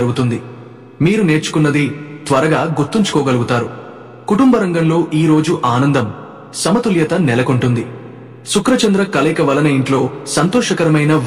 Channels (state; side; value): identical; both; correlation 1.00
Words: మీరు నేర్చుకున్నది త్వరగా గుర్తుంచుకోగలుగుతారు. కుటుంబ రంగంలో ఈ రోజు ఆనందం, సమతుల్యత నెలకొంటుంది. శుక్రచంద్ర కలయిక వలన ఇంట్లో సంతోషకరమైన